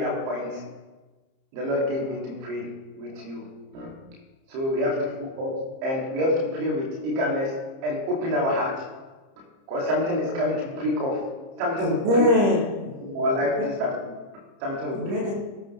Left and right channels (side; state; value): left; late; 30 ms